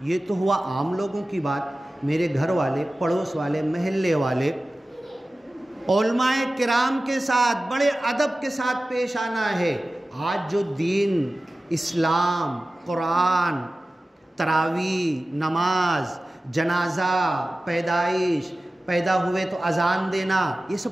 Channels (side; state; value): both; normal; correlation 0.96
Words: یہ تو ہوا عام لوگوں کی بات، میرے گھر والے، پڑوس والے، محلے والے، علماء کرام کے ساتھ بڑے ادب کے ساتھ پیش آنا ہے۔ آج جو دین، اسلام، قرآن، تراویح، نماز، جنازہ، پیدائش، پیدا ہوئے تو اذان دینا، یہ